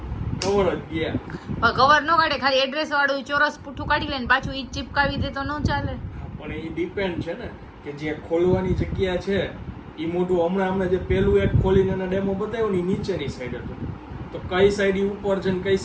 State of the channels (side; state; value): both; identical; correlation 1.00